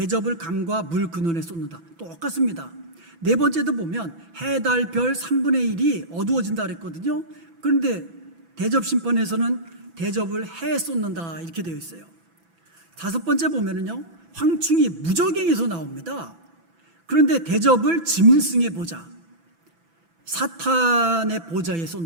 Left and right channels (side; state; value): left; late; 6.0 ms